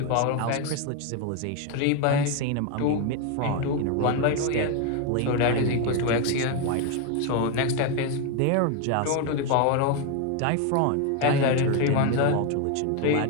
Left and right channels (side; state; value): both; different; correlation 0.02